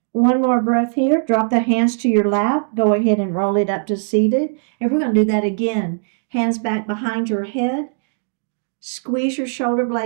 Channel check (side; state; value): left; silent; digital silence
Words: One more breath here. Drop the hands to your lap. Go ahead and roll it up to seated. And we're going to do that again. Hands back behind your head. Squeeze your shoulder